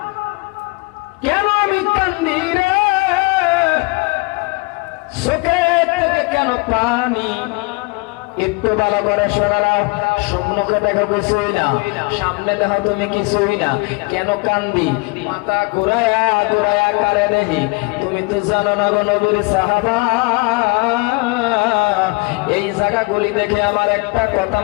কেন আমি কান্দি রে, চোখের থেকে কেন পানি, একটু ভালো করে শোনা নাও। সম্মুখে দেখো কিছুই না, সামনে দেখো তুমি কিছুই না, কেন কান্দি? মাথা ঘুরায়া ঘুরায়া কারে নেহি, তুমি তো জানো না গো নবীর সাহাবা। এই জায়গাগুলি দেখে আমার একটা কথা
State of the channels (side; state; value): right; quieter; 27.5 dB